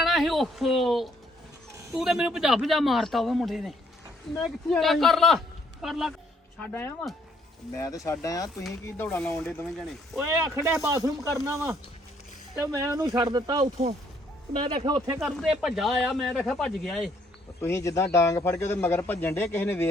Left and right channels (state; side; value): normal; both; correlation 0.66